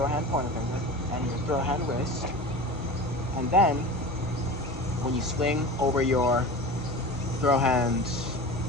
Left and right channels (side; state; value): both; normal; correlation 0.33